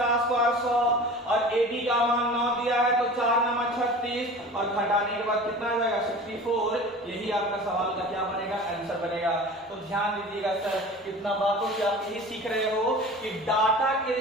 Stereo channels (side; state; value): both; normal; correlation 0.38